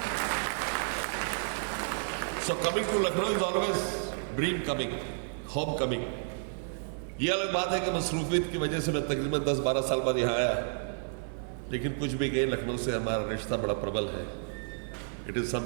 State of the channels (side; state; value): left; silent; 57 dB below the other